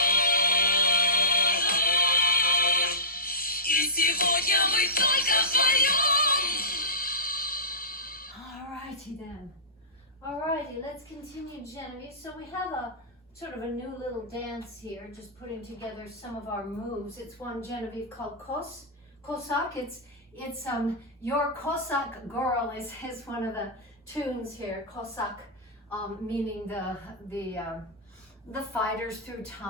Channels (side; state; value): both; normal; correlation -0.19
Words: И сегодня мы только вдвоем. Alrighty then. Alrighty, let's continue, Genevieve. So we have a sort of a new little dance here, just putting together some of our moves. It's one, Genevieve, called Cossack. It's Your Cossack Girl is one of the tunes here. Cossack, meaning the fighters through